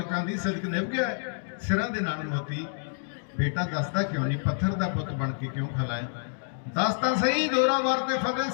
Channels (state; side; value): silent; right; digital silence